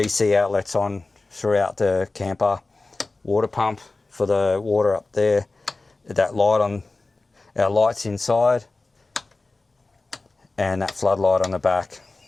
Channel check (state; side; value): quieter; right; 3.4 dB